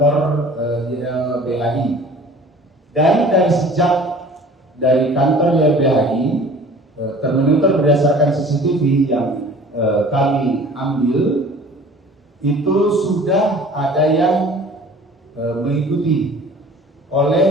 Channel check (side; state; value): both; normal; correlation 0.47